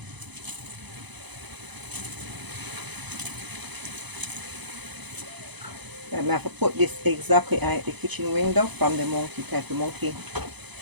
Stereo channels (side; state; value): left; late; 0.99 ms